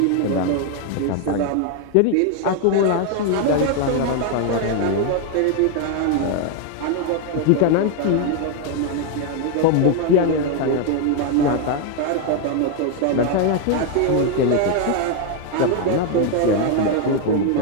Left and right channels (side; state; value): both; different; correlation 0.01